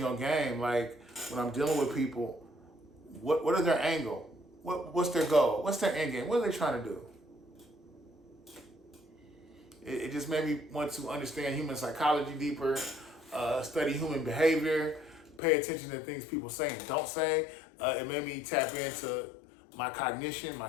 on game. Like when I'm dealing with people, what is their angle? What's their goal? What's their end game? What are they trying to do? It just made me want to understand human psychology deeper, study human behavior, pay attention to things people say and don't say. It made me tap into my cognition, my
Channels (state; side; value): drops out; right; at 15.4 s